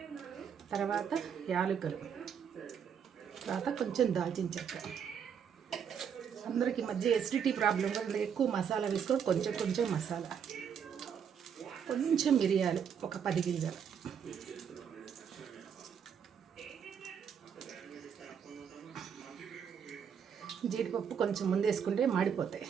తర్వాత యాలకులు, తర్వాత కొంచెం దాల్చిన చెక్క. అందరికి మధ్య ఎసిడిటీ ప్రాబ్లం వల్ల ఎక్కువ మసాలా వేసుకొని కొంచెం మసాలా, కొంచెం మిరియాలు ఒక 10 గింజలు, జీడిపప్పు కొంచెం ముందు వేసుకుంటే మాడిపోతాయి,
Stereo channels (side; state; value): left; quieter; 7.6 dB